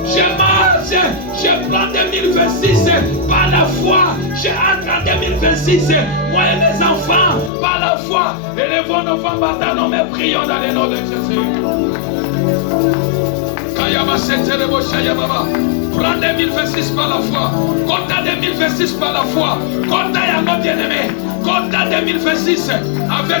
je marche, je prends 2026 par la foi, je entre en 2026, moi et mes enfants, par la foi, élevons nos femmes matin, nous me prions dans le nom de Jésus. Prends 2026 par la foi. Compte 2026 par la foi. Compte à nos bien-aimés. Compte 2026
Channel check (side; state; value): right; drops out; at 7.5 s